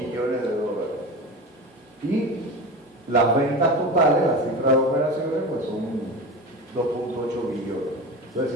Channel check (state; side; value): normal; both; correlation 0.28